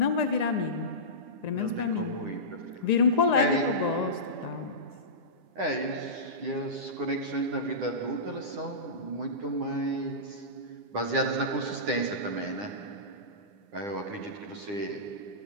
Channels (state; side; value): late; left; 9.9 ms